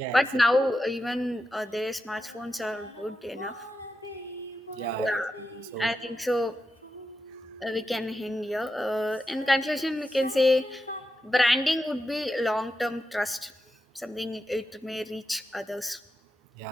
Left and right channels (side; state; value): both; normal; correlation 0.89